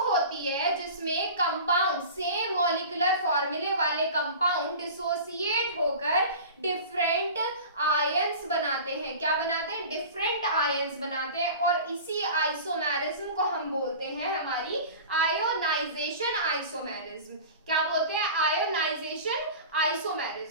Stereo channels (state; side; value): inverted; both; correlation -0.37